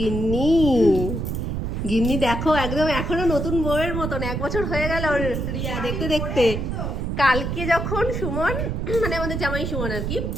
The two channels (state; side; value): noise; right; rumble, 2 dB below the sound